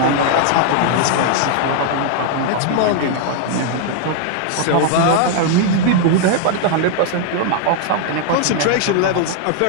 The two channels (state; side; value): different; both; correlation -0.01